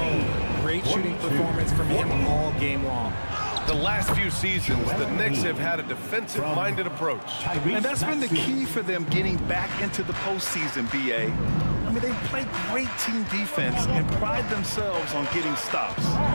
Great shooting performance from him all game long. The last few seasons, the Knicks have had a defensive-minded approach. And that's been the key for them getting back into the postseason, B.A. I mean, they play great team defense and pride themselves on getting stops.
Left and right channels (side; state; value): both; inverted; correlation -1.00